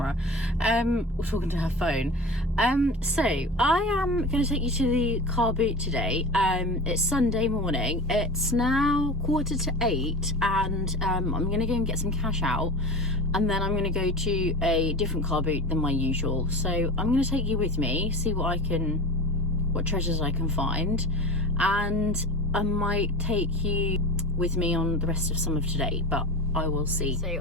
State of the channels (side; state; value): both; normal; correlation 0.30